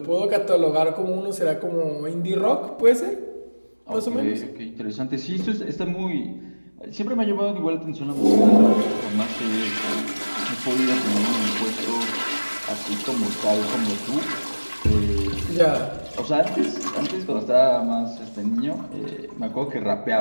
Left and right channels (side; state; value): both; inverted; correlation -1.00